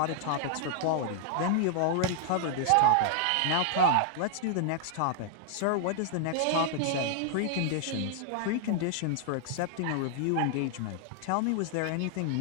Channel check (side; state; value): both; different; correlation 0.00